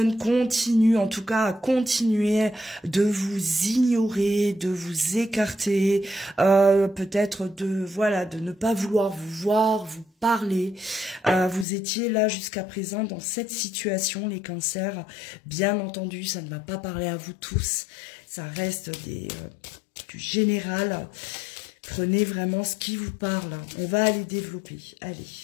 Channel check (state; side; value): drops out; right; at 11.7 s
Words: continue, en tout cas, à continuer de vous ignorer, de vous écarter, peut-être de ne pas vouloir vous voir, vous parler. Vous étiez là jusqu'à présent dans cette situation, les cancers. Bien entendu, ça ne va pas parler à vous tous. Ça reste du général. Prenez vraiment ce qui vous parle. On va aller développer. Allez,